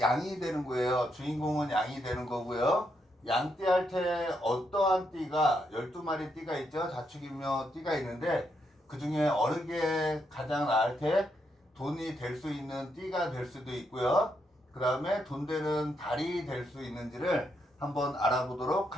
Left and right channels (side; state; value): both; normal; correlation 0.79